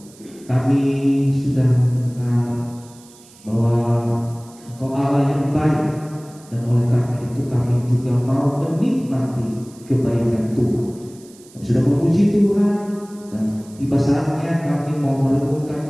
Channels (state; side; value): noise; right; hiss, 24 dB below the sound